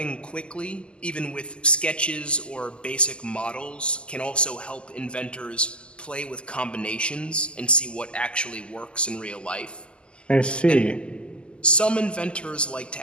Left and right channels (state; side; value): late; right; 0.051 ms